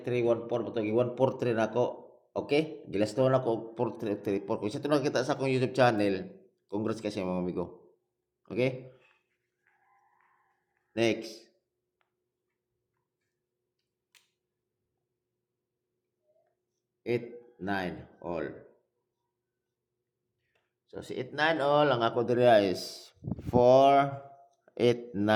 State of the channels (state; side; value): identical; both; correlation 1.00